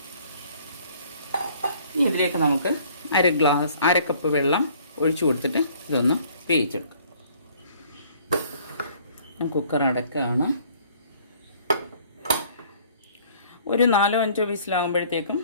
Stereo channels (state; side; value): inverted; both; correlation -0.57